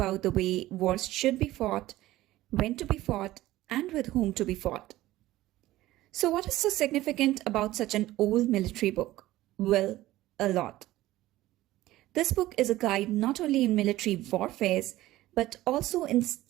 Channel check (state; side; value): quieter; left; 16.2 dB